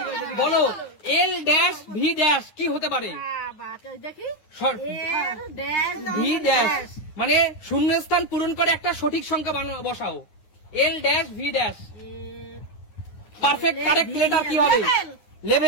বলো এল ড্যাশ ভি ড্যাশ কি হতে পারে? ভি ড্যাশ মানে শূন্যস্থান পূরণ করে একটা সঠিক সংখ্যা বসাও। L dash V dash perfect correct letter কি হবে?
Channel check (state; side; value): late; right; 9.6 ms